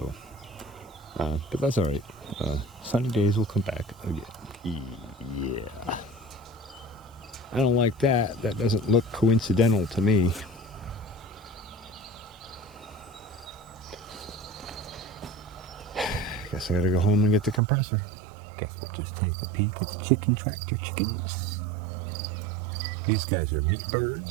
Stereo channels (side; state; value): left; drops out; at 17.6 s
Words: but that's all right. Sunny days will come back again. Yeah. I don't like that. That doesn't look coincidental to me. Guess I gotta go home and get the compressor. Guess we'll just take a peek at the chicken tractor chickens. These guys are meat